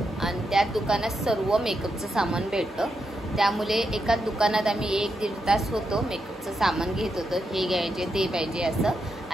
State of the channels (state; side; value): normal; both; correlation 0.84